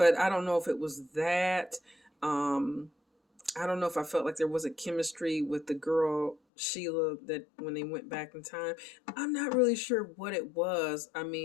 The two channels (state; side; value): drops out; right; at 6.4 s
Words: I don't know if it was that. I don't know if I felt like there was a chemistry with the girl Sheila that when they went back in time. I'm not really sure what it was. I